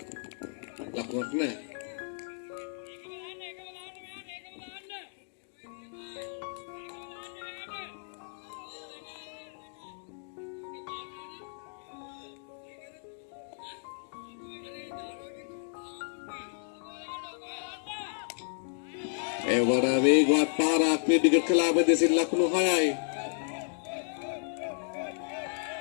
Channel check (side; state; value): right; silent; digital silence